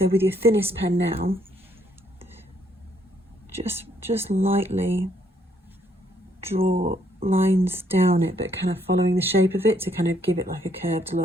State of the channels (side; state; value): both; normal; correlation 0.70